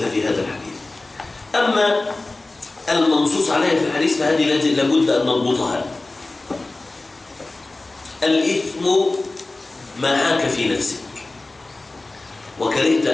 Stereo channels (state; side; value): quieter; right; 3.1 dB